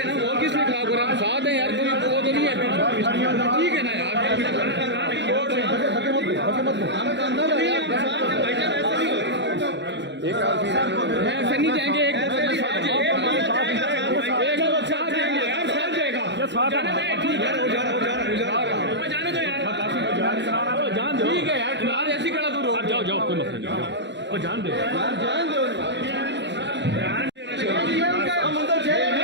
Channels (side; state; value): left; late; 0.52 ms